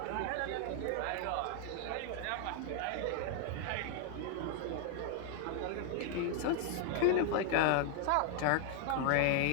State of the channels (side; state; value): both; different; correlation 0.00